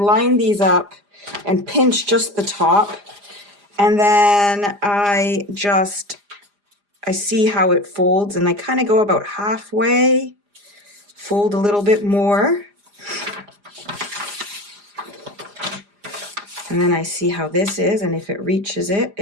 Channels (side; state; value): left; late; 4.9 ms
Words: these up and pinch just the top, and then I see how it folds, and I kind of go about halfway, fold a little bit more, and then I see how this is, and if it reaches it,